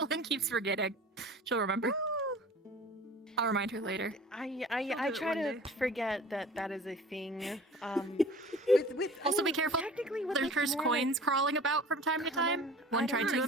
keeps forgetting. She'll remember. I'll remind her later. I try to forget that that is a thing. Also, be careful. There's cursed coins crawling about from time to time. One tried to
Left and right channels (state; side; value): normal; both; correlation 0.43